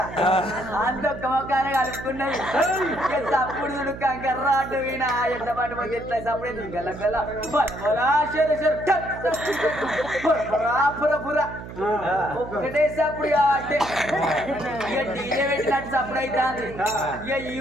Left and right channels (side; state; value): right; noise; hum, 12 dB below the sound